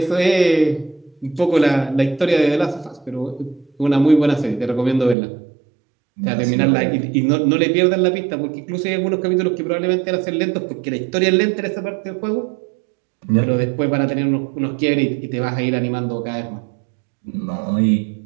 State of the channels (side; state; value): left; drops out; at 5.2 s